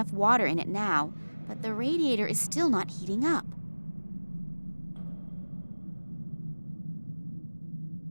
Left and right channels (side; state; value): both; inverted; correlation -1.00